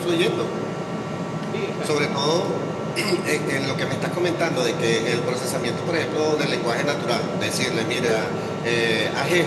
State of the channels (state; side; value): identical; both; correlation 1.00